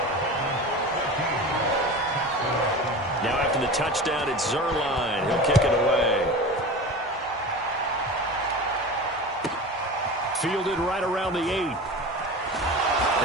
Now after the touchdown, it's Zerline. He'll kick it away. Fielded right around the 8.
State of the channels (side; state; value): both; normal; correlation 0.32